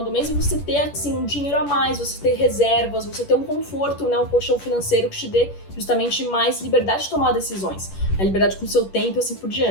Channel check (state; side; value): late; right; 10 ms